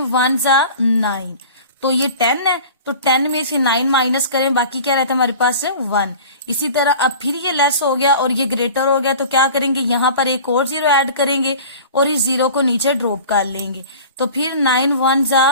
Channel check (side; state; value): both; inverted; correlation -0.40